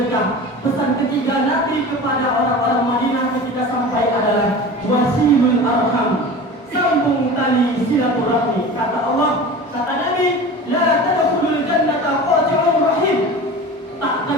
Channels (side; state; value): both; normal; correlation 0.35